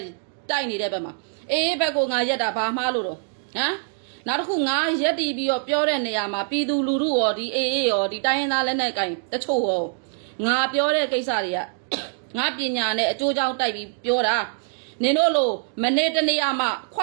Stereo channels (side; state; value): left; silent; 61 dB below the other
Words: တိုက်နေတဲ့ဘက်မှာအေးဘက်ကိုငါရက်တာဘာမှားလို့တော့ဟမ်နောက်တစ်ခုငါရက်တီးပြီးတော့ပြောတဲ့နေရာမှာပြည်သူလူထုရောဒီအေးရောဒီတိုင်းရင်းသားလက်နက်ကင်တချို့ရောငါပြောတဲ့ကိစ္စတွေကငါပညာနဲ့အကျိုးကြောင့်တိုက်ပြီးပြောတာနင်တို့လိုမနေ့တနေ့မှခွ